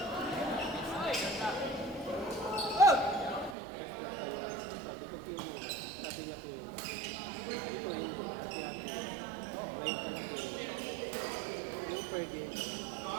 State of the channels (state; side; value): drops out; left; at 3.6 s